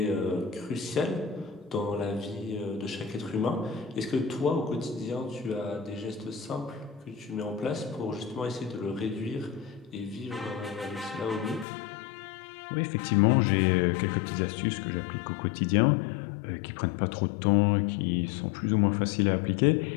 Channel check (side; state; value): right; drops out; at 11.7 s